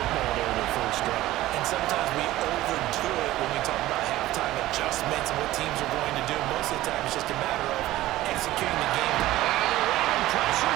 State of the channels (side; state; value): left; quieter; 15.9 dB